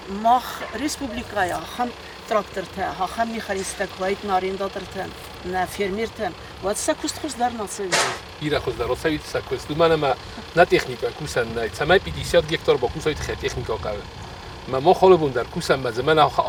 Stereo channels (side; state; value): both; identical; correlation 1.00